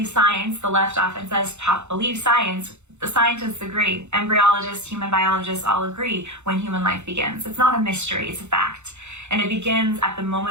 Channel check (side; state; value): left; late; 0.83 ms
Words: science. The left often says, believe science. The scientists agree. Embryologists, human biologists all agree when human life begins. It's not a mystery, it's a fact. And it begins at the